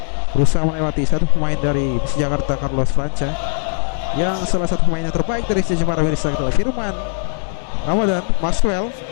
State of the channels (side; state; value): right; silent; 55 dB below the other